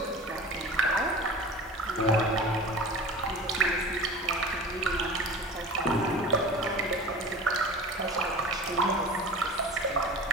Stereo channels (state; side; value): normal; both; correlation 0.36